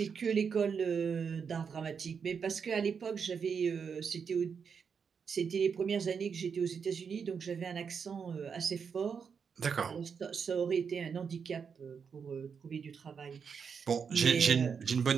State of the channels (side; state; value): left; quieter; 6.3 dB